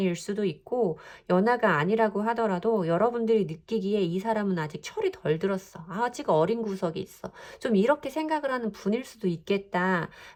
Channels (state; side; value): identical; both; correlation 1.00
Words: 수도 있고 연하가 아니라고 하더라도 여러분들이 느끼기에 이 사람은 아직 철이 덜 들었어. 아직 어린 구석이 있어. 좀 이렇게 생각을 하는 분일 수도